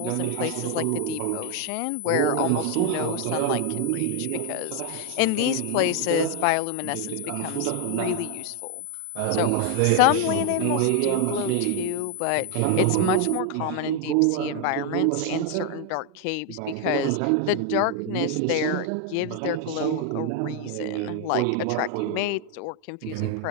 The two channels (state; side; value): different; both; correlation 0.00